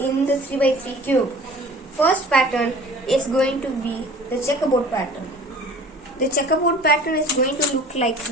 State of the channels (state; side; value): normal; both; correlation 0.45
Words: the 3x3 cube. First pattern is going to be the checkerboard pattern. The checkerboard pattern is going to look like